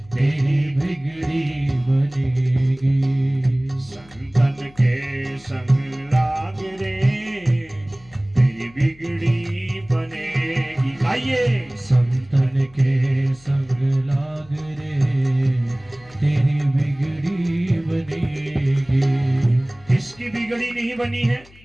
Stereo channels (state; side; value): noise; left; hum, 25 dB below the sound